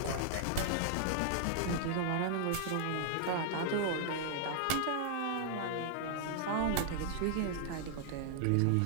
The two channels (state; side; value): different; both; correlation -0.01